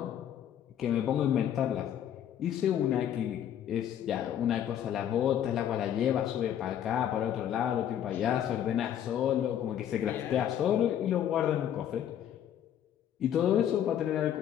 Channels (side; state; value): right; quieter; 10.1 dB